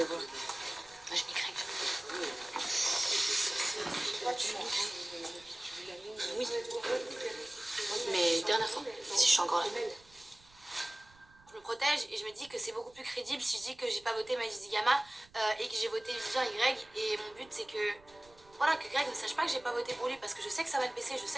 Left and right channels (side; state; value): right; noise; rumble, 27 dB below the sound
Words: quoi? Moi, je mets Greg. Tu mets Greg? Oui. Mais dernière fois, si je suis encore là. Je me protège et je me dis que c'est beaucoup plus crédible si je dis que j'ai pas voté Maïs Gama et que j'ai voté Vivian et Greg. Et mon but, c'est que, voilà, que Greg ne sache pas que j'ai pas voté pour lui parce que je sais que ça va le baisser, je